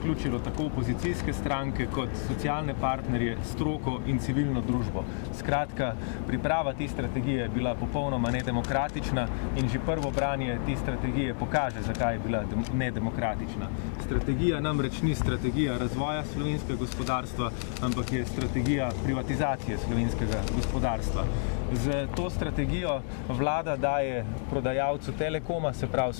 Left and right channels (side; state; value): right; silent; digital silence